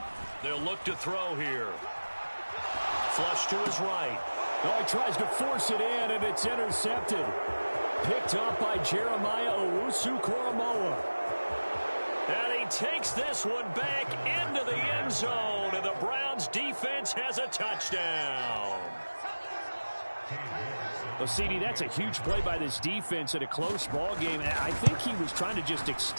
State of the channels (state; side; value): inverted; both; correlation -1.00